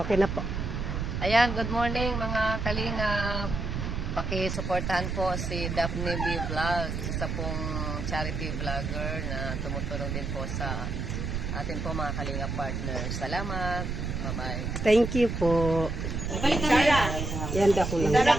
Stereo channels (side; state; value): right; noise; rumble, 3 dB below the sound